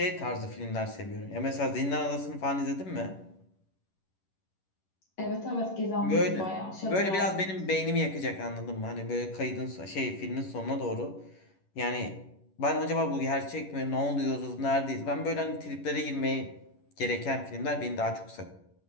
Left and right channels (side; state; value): right; late; 11 ms